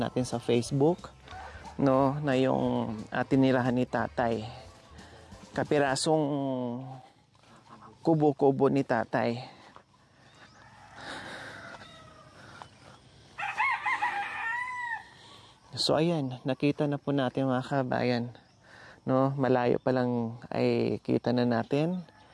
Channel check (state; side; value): identical; both; correlation 1.00